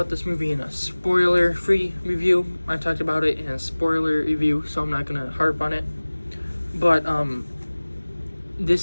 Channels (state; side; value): inverted; both; correlation -1.00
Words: this movie in a spoiler-free review. I talked about it in a spoiler review, so I'm not gonna harp on it. But